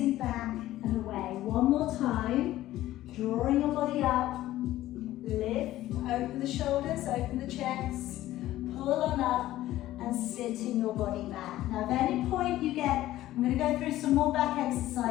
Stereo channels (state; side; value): quieter; right; 14.8 dB